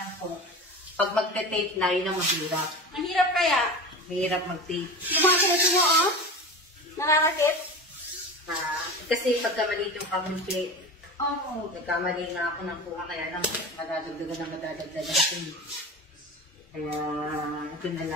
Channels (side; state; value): both; normal; correlation 0.30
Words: po, pag magte-tape na, yun ang mahirap. Ang hirap kaya. Mahirap mag-tape. Yung mga sunod mo, oh. Nararakit. Kasi pagka maliit yung kamumpi, Oo. nagkamali na ako ng kuha, kaya lang madadagdagan. Kaya, ito na